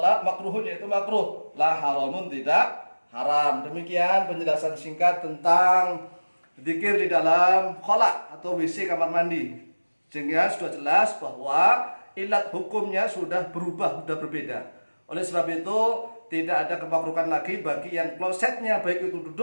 makruhun yaitu makruh, la haramun tidak haram. Demikian penjelasan singkat tentang zikir di dalam khola atau WC kamar mandi. Sehingga sudah jelas bahwa ilat hukumnya sudah berubah, sudah berbeda. Oleh sebab itu tidak ada kemakruhan lagi bagi yang klosetnya baik itu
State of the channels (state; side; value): inverted; both; correlation -1.00